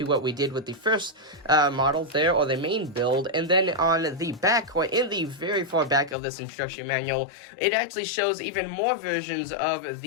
what we did with the first model there, or the main build. And then on the back, or in the very far back of this instruction manual, it actually shows even more versions of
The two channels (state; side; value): drops out; right; at 6.2 s